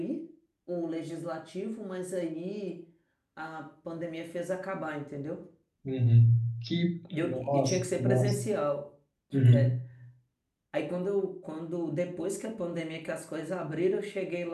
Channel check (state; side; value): identical; both; correlation 1.00